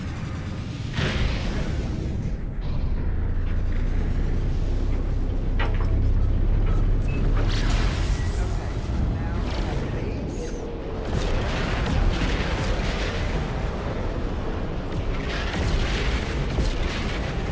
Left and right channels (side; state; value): both; identical; correlation 1.00